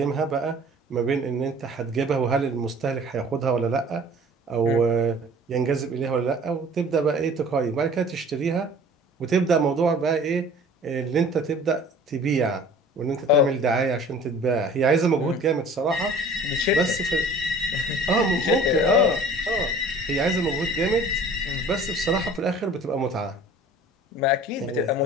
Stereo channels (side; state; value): both; normal; correlation 0.47